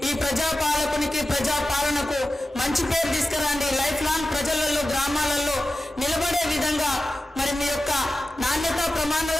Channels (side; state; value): both; normal; correlation 0.94